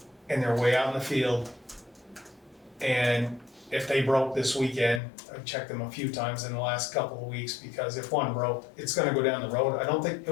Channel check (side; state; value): right; drops out; at 5.0 s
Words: and they're way out in the field. And if they broke this weekend, I've checked them a few times in the last couple of weeks, because if one broke, it's gonna go down the road. It